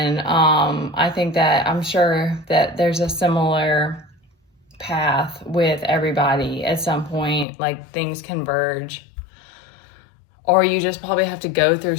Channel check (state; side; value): drops out; right; at 7.5 s